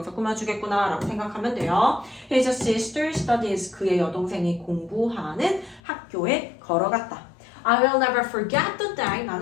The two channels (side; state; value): right; drops out; at 5.8 s